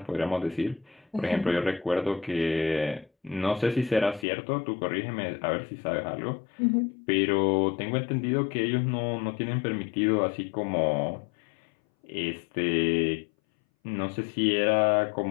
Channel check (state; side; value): drops out; right; at 4.2 s